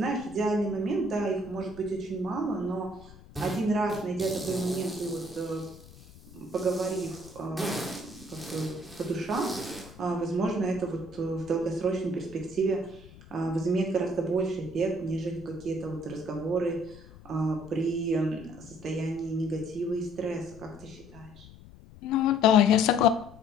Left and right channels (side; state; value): left; noise; rumble, 20 dB below the sound